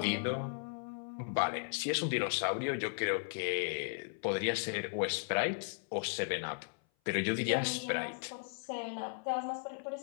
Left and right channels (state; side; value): silent; right; 54 dB below the other